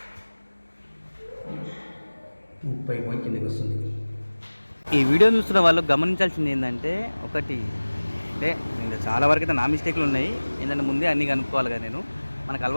కిందకి వస్తుంది. ఈ వీడియో చూస్తున్న వాళ్ళు గమనించాల్సింది ఏంటంటే, ఒకటి అంటే చాలా వరకు అయితే నా మిస్టేక్లు ఉన్నాయి. ఏంటంటే ముందే అన్నీ కనుక్కోవాలి కదా. నేను మనకు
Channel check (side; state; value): both; inverted; correlation -1.00